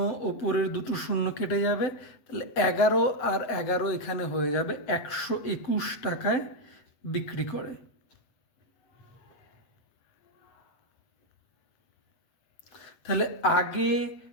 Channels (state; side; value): late; right; 8.0 ms